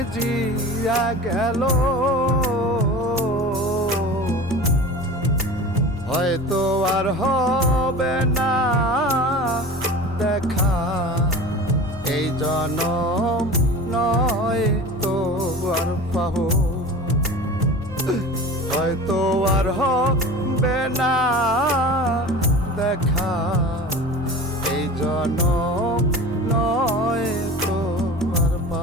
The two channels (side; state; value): both; normal; correlation 0.35